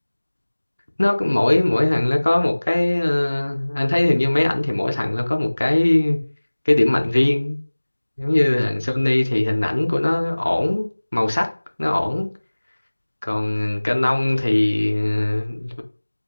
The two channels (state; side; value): inverted; both; correlation -1.00